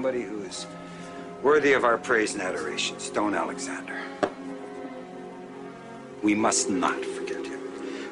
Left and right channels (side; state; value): both; identical; correlation 1.00